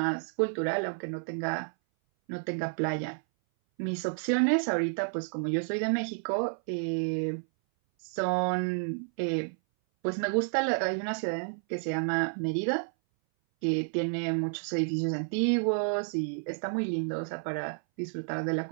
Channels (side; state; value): left; silent; 57 dB below the other